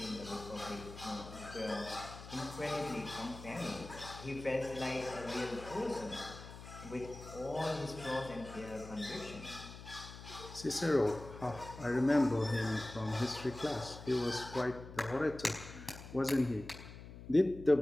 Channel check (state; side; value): noise; left; hum, 13 dB below the sound